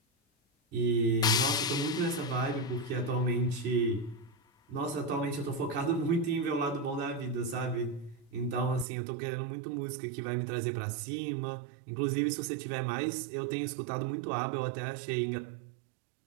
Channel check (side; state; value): left; drops out; at 8.8 s